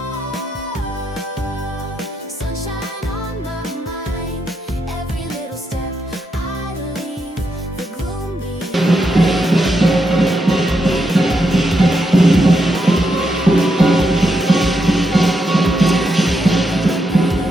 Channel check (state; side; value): normal; both; correlation 0.82